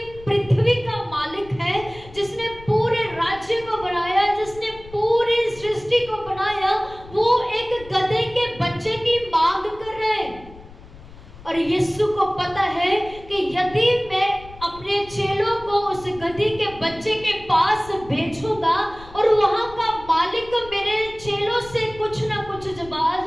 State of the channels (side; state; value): left; noise; rumble, 19 dB below the sound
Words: पृथ्वी का मालिक है, जिसने पूरे राज्य को बनाया, जिसने पूरी सृष्टि को बनाया, वो एक गधे के बच्चे की मांग कर रहे हैं। और यीशु को पता है कि यदि मैं अपने चेलों को उस गधे के बच्चे के पास भेजूंगा और वहां का मालिक मेरे चेलों से कुछ ना कुछ जवाब